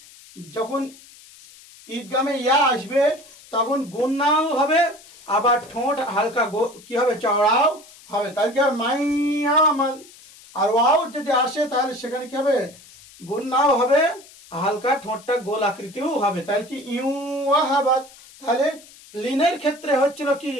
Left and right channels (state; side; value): noise; left; hiss, 22 dB below the sound